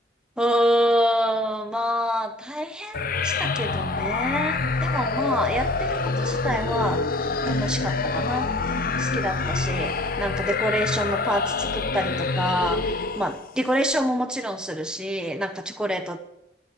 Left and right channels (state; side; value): normal; both; correlation 0.52